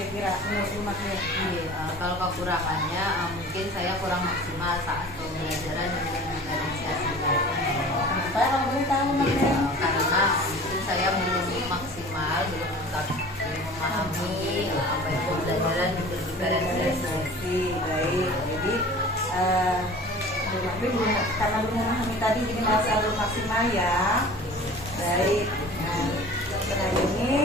menurut Bu Magnin? Kalau kekurangannya mungkin saya kurang maksimal saat pembelajaran dengan diferensiasi. Kenapa kalau boleh tahu Bu Magnin? Karena mungkin saya belum maksimal, belum tetap memahami apa yang pembelajaran diferensiasi. Baik, jadi Bu Magnin karena belum memahami tadi jadi masih belum maksimal ya. Baik. Nah, setelah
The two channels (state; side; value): normal; both; correlation 0.42